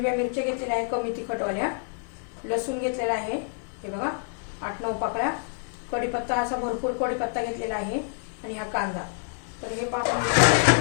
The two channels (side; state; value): right; silent; 59 dB below the other